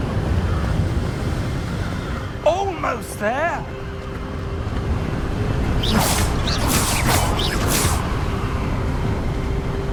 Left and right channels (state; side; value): identical; both; correlation 1.00